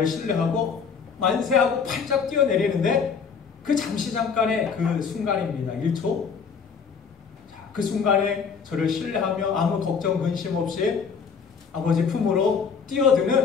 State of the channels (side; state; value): right; quieter; 6.0 dB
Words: 신뢰하고 만세하고 팔짝 뛰어내리는데 그 잠깐의 그 순간입니다. 1초. 그 순간에 저를 신뢰하며 아무 걱정 근심 없이 아버지 품으로